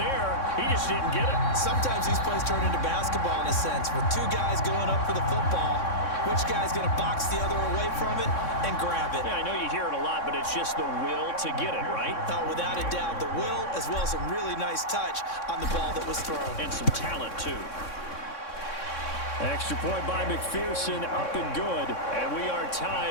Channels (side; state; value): right; late; 3.6 ms